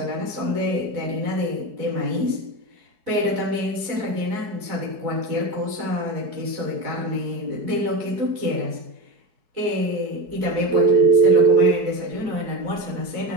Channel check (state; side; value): late; left; 4.6 ms